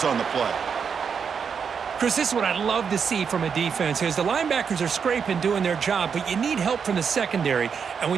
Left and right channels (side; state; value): left; quieter; 6.5 dB